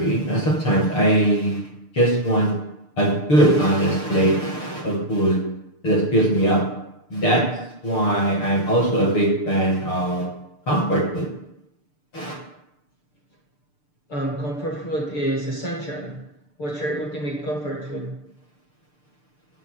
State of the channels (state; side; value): late; right; 6.7 ms